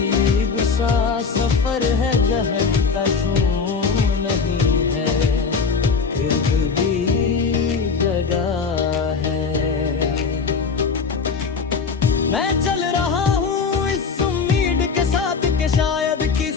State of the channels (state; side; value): quieter; right; 5.3 dB